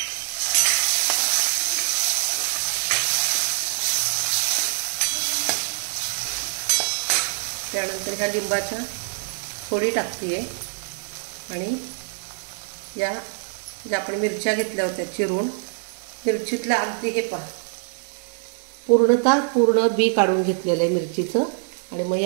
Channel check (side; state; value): left; silent; 60 dB below the other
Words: त्यानंतर ह्या लिंबाच्या फोडी टाकते आणि या ज्या आपण मिरच्या घेतल्या होत्या चिरून, मिरचीतला अगदी हे पहा पूर्ण बी काढून घेतलेलं आहे मिरचीचं. आणि मग